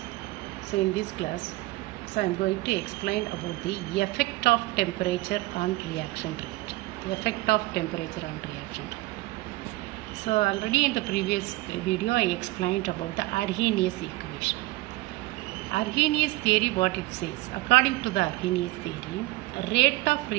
so in this class I am going to explain about the effect of temperature on reaction rate. Effect of temperature on reaction rate. So already in the previous video I explained about the Arrhenius equation. Arrhenius theory, what it says, according to the Arrhenius theory, rate of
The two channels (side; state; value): left; quieter; 19.8 dB